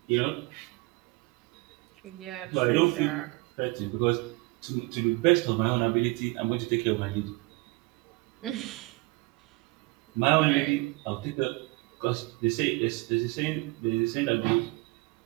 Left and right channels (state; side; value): quieter; left; 24.2 dB